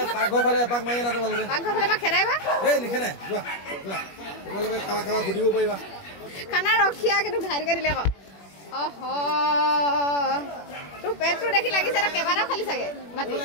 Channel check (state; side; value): late; right; 21 ms